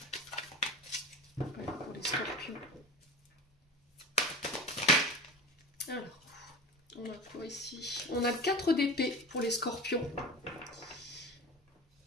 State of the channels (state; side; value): normal; both; correlation 0.33